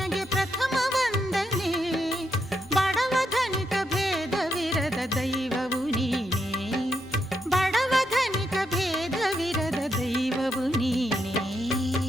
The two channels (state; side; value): normal; both; correlation 0.81